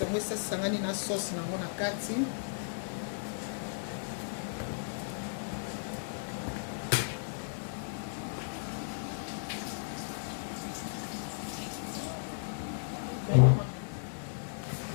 ngo esa sangani na sauce nango na kati.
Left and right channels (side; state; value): right; silent; digital silence